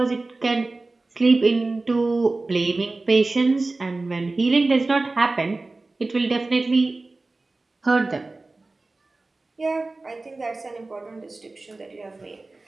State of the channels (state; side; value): quieter; left; 3.3 dB